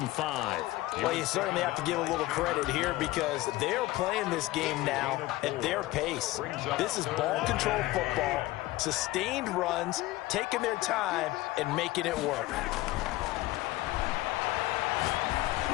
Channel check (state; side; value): quieter; right; 18.0 dB